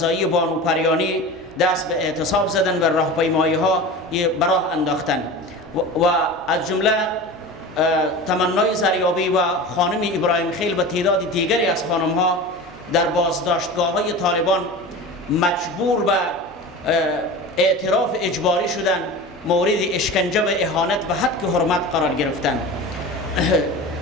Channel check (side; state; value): both; normal; correlation 0.32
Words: بانو پریانی دست به اعتصاب زدن و راهپیمایی ها به راه انداختن و از جمله تمنای زریابی و خانم ابراهیم خیل و تعداد دیگری از خانم ها در بازداشتگاه های طالبان مجبور به اعتراف اجباری شدن، مورد اشکنجه و اهانت و حد حرمت قرار گرفتن